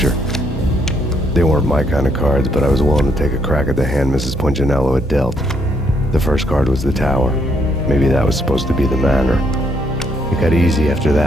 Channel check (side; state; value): both; normal; correlation 0.72